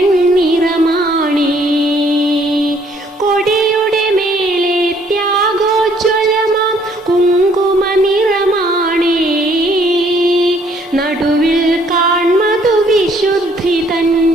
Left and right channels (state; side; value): normal; both; correlation 0.64